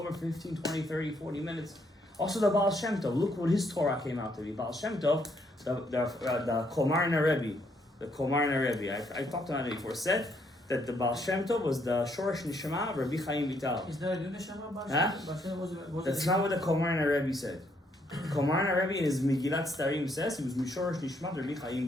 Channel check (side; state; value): both; normal; correlation 0.72